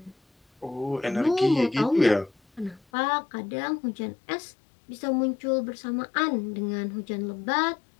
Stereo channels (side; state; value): right; drops out; at 2.8 s